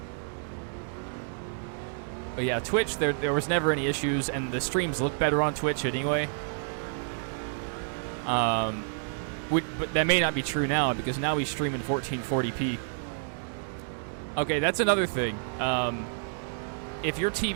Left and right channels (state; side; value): silent; left; digital silence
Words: yeah, Twitch, there was never any issues, and the streams look better on Twitch anyway. But that may not be true now, because now we stream in 1440p. Okay, that's another thing. If your